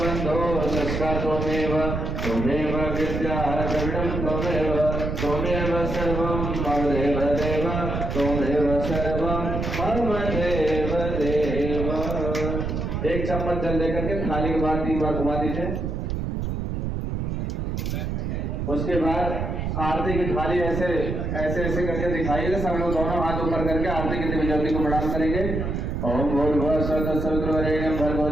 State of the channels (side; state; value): right; noise; rumble, 2 dB below the sound